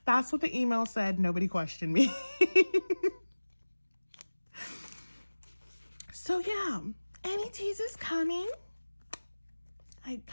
That's what the email said. Nobody questioned me. So yeah, anti-teas is coming. I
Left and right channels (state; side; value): inverted; both; correlation -1.00